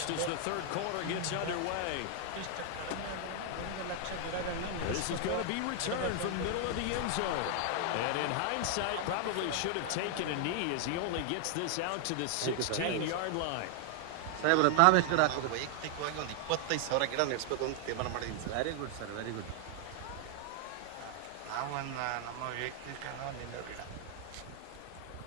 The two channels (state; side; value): different; both; correlation 0.00